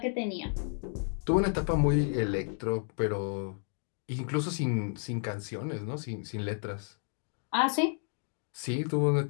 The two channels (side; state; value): right; silent; 57 dB below the other